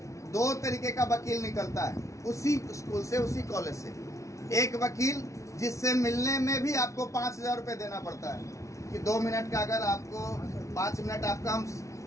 दो तरीके का वकील निकलता है उसी स्कूल से, उसी कॉलेज से। एक वकील जिससे मिलने में भी आपको 5,000 रुपये देना पड़ता है कि 2 मिनट का, अगर आपको 5 मिनट आपका हम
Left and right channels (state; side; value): late; right; 0.15 ms